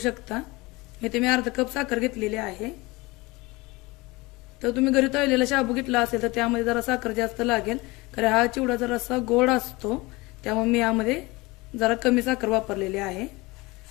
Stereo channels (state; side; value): quieter; right; 23.1 dB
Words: इथे मी अर्धा कप साखर घेतलेली आहे. तर तुम्ही घरी तळलेला शाबू घेतला असेल तर त्यामध्ये जरा साखर जास्त लागेल, कारण हा चिवडा जरासा गोड असतो. त्यामुळे मी यामध्ये जरा कमी साखर वापरलेली आहे.